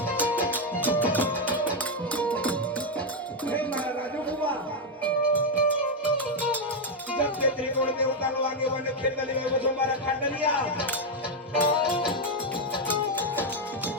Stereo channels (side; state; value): both; normal; correlation 0.02